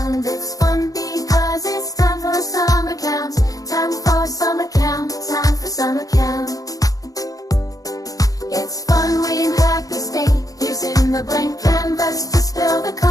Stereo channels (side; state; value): right; late; 0.17 ms